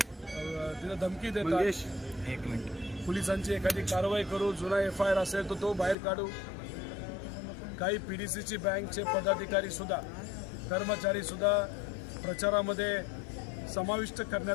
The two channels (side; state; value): right; drops out; at 6.0 s